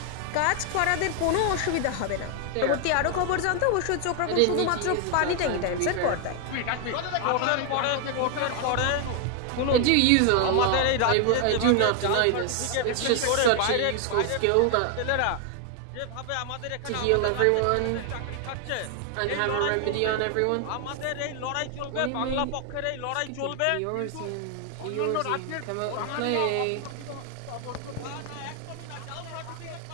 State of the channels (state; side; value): different; both; correlation 0.00